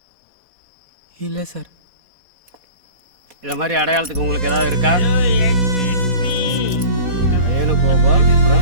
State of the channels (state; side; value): late; left; 4.2 ms